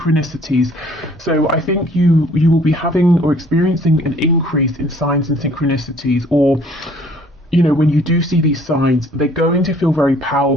So I think you will be having or experiencing an increase in signs and synchronicities, or you know, when you do see these signs, they're going to feel very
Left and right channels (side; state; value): both; normal; correlation 0.57